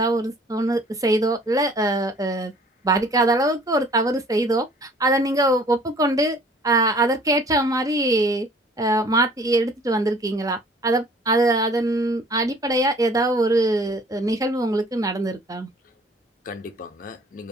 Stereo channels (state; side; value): normal; both; correlation 0.53